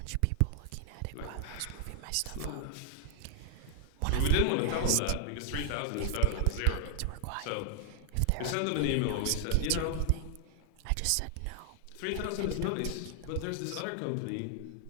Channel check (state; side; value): different; both; correlation 0.00